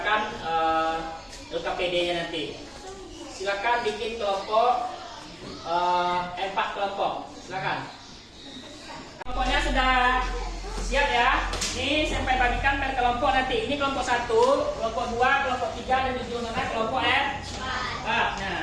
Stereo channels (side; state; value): both; identical; correlation 1.00